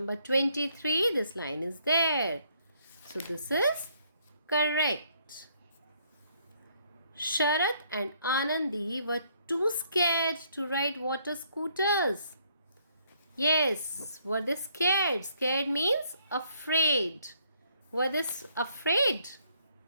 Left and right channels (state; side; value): inverted; both; correlation -0.68